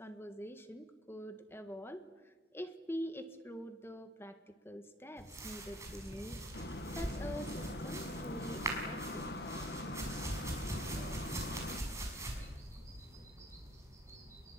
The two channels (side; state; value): both; normal; correlation 0.57